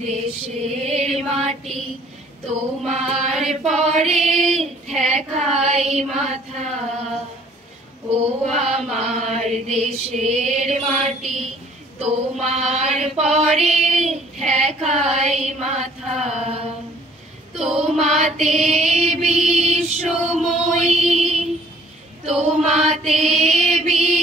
দেশের মাটি তোমার পরে ঠেকাই মাথা, ও আমার দেশের মাটি তোমার পরে ঠেকাই মাথা। তোমাতে বিশ্বময়ী, তোমাতে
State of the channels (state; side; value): normal; both; correlation 0.57